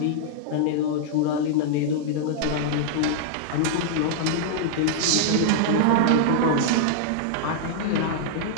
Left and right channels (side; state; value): both; different; correlation -0.01